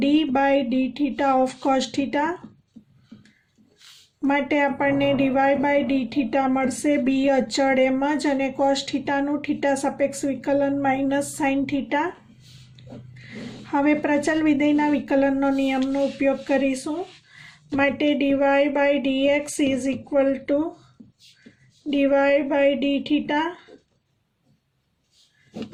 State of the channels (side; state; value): both; identical; correlation 1.00